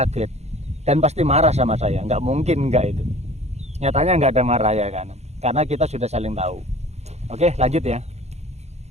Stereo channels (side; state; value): left; late; 0.32 ms